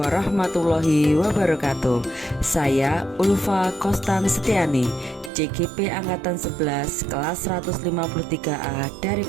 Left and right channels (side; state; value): left; drops out; at 5.3 s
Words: wabarakatuh. Saya Ulfa Kostan Setiani, CGP Angkatan 11 kelas 153A dari